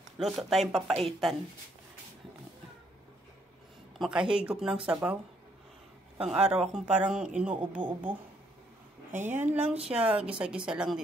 Luto tayong papaitan. Makahigop ng sabaw. Pang araw akong parang inuubo-ubo. Ayan lang siya. Gisa-gisa lang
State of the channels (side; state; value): both; normal; correlation 0.70